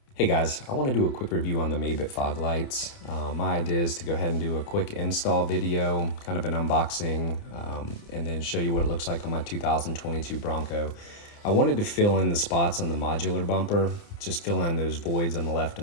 Hey guys, I want to do a quick review on the Mabett Fog Lights. My idea is to go ahead and do a quick install video, kind of an unboxing, and then show you what it looks like on my 2022 Bronco. I wanted to fill in the spots on the modular bumper, just fill in those voids on the left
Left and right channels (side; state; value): right; late; 29 ms